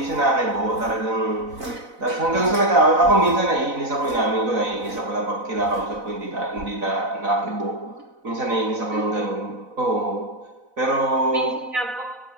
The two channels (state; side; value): late; left; 4.0 ms